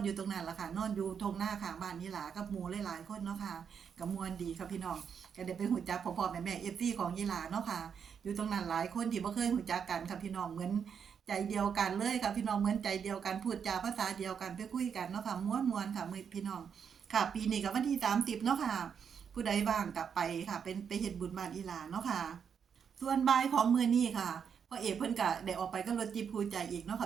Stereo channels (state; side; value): quieter; left; 7.2 dB